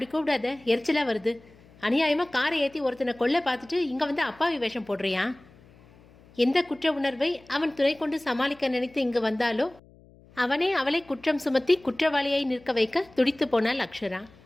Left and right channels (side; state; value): left; noise; hum, 26 dB below the sound